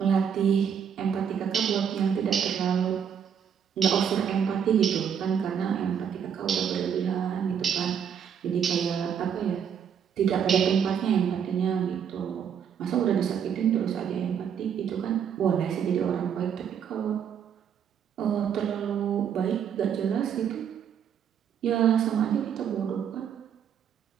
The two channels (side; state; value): left; quieter; 8.0 dB